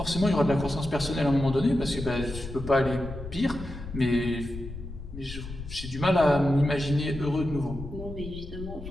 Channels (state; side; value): noise; left; rumble, 11 dB below the sound